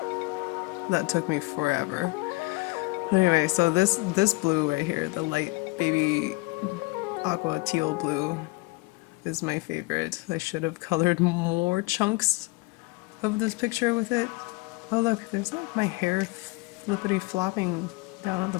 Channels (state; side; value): quieter; right; 24.5 dB